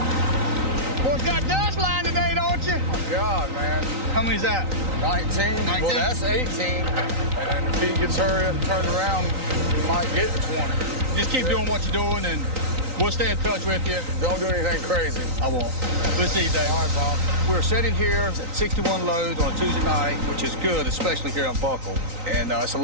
Boy, got dust line today, don't you? Oh, God, man. How many's that? 19. Well, that's 18. And if he gets hurry up and turned around, he might get to 20. Just keep doing what you're doing, and we'll stay in touch with you. Don't do anything crazy. I won't. We'll see you, Dave. All right, Bob. We're sitting here at 61 loads on a Tuesday night, which is good, especially here on Buckle. And it's a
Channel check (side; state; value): left; late; 3.9 ms